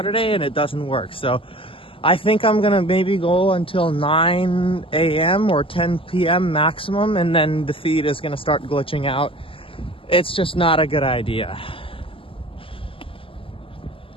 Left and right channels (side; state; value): right; late; 0.26 ms